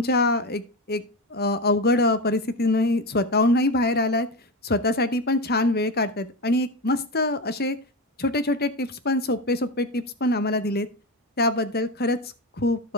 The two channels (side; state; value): both; normal; correlation 0.18